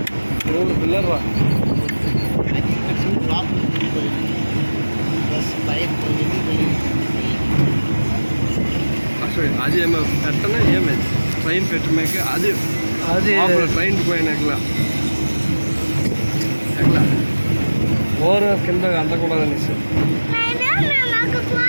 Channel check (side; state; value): both; inverted; correlation -1.00